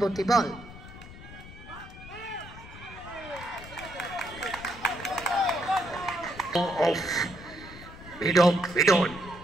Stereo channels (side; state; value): left; noise; rumble, 16 dB below the sound